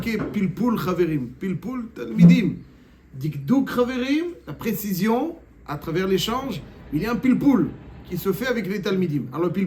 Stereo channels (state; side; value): identical; both; correlation 1.00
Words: Pilpul Chaverim, Pilpul Talmidim. Dikduk Chaverim, la précision, à travers l'échange, il y a un pilpoul qui se fait avec les talmidim. Alors le